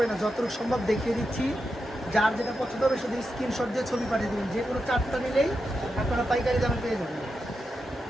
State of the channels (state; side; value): normal; both; correlation 0.88